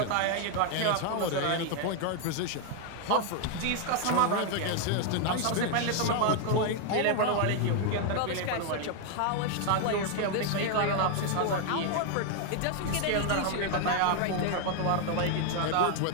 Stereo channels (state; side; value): different; both; correlation 0.00